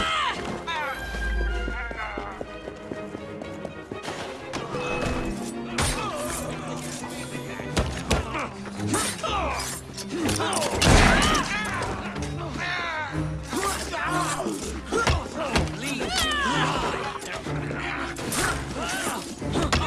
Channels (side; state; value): both; identical; correlation 1.00